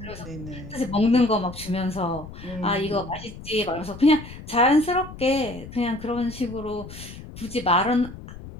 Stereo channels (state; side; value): noise; left; rumble, 14 dB below the sound